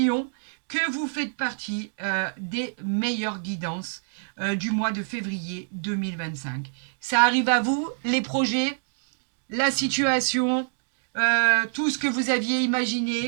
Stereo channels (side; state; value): left; silent; digital silence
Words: que vous faites partie des meilleures guidances du mois de février 2025. Ça arrive à vous, les projets, la situation, tout ce que vous aviez